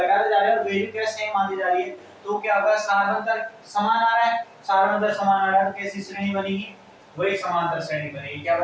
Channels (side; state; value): both; identical; correlation 1.00